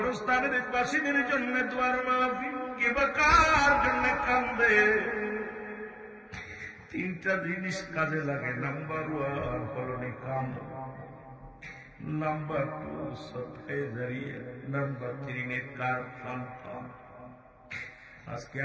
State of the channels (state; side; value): identical; both; correlation 1.00